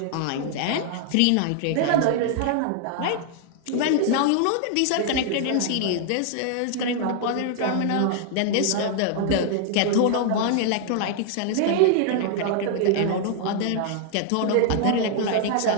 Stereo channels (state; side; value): different; both; correlation 0.00